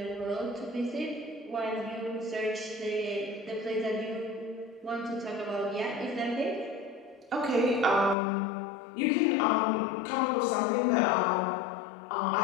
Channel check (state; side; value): drops out; right; at 8.2 s